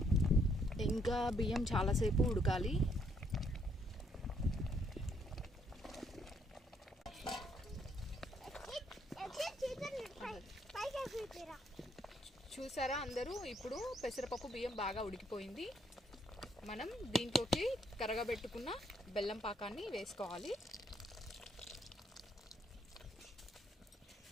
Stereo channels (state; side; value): normal; both; correlation 0.71